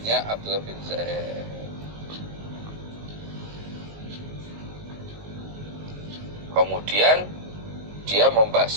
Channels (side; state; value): left; late; 19 ms